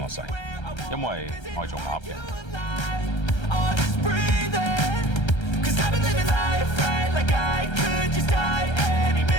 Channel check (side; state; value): right; late; 1.3 ms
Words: 使，因為我係做鴨嘅。